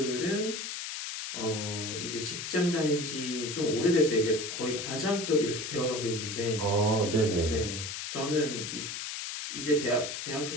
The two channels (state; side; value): noise; left; hiss, 6 dB below the sound